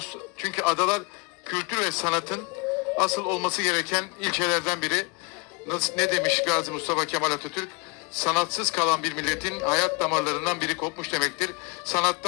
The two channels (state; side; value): quieter; right; 29.0 dB